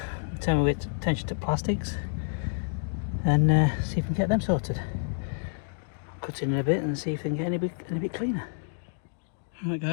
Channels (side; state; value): right; silent; digital silence